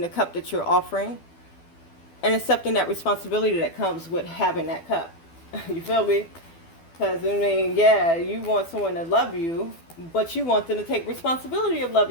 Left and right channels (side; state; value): right; late; 12 ms